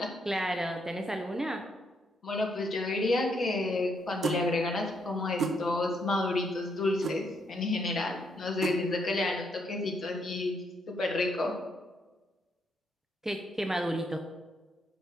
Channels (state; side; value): normal; both; correlation 0.75